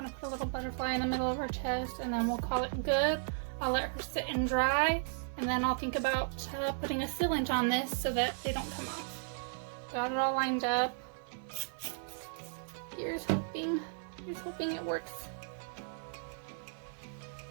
want to put a little butterfly in the middle of her chest, and then we'll call it good. I'll let her sit and dry, and then I'll think about putting a sealant on this so that they don't come off. Got it all lined up. Here's hoping it works.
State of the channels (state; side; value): silent; left; 54 dB below the other